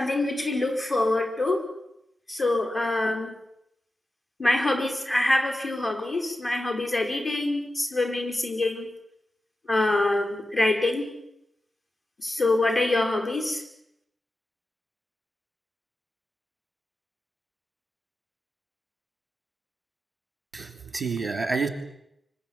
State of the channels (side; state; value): both; normal; correlation 0.92